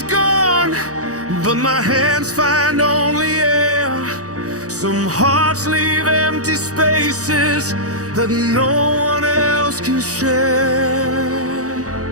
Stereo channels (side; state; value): left; late; 0.66 ms